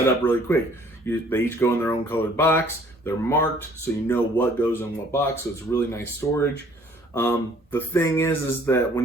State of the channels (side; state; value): both; normal; correlation 0.57